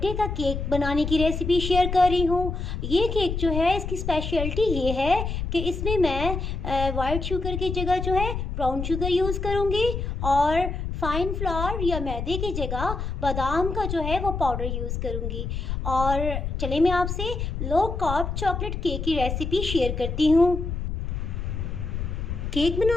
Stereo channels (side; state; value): left; noise; rumble, 4 dB below the sound